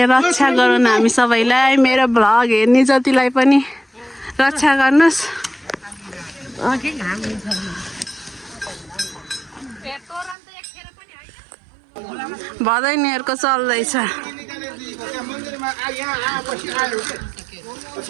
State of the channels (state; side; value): drops out; left; at 10.4 s